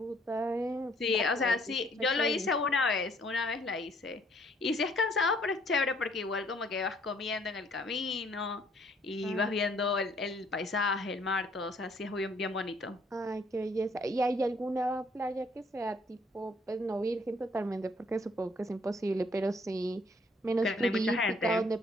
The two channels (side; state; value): both; normal; correlation 0.64